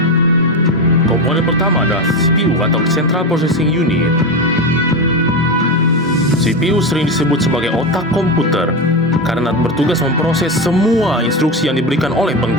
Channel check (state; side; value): normal; both; correlation 0.16